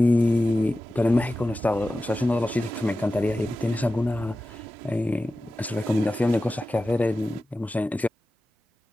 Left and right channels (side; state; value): both; normal; correlation 0.94